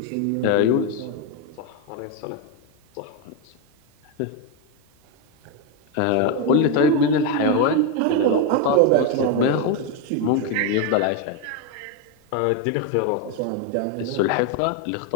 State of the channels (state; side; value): different; both; correlation 0.02